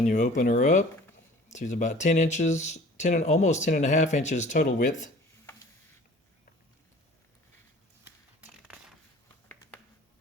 you open her up, she's about 10 inches, almost 10.5 inches total width.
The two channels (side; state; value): both; normal; correlation 0.47